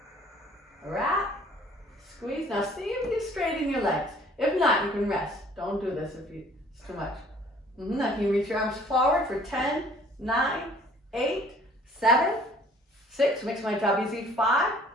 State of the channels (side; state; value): both; normal; correlation 0.55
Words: wrap, squeeze. Now see if you straighten your legs. If not, you can rest. Don't do this if it's too much. Now can you reach your arms forward for 10, 9, 8, 7, 6. Makes my job easy. 5,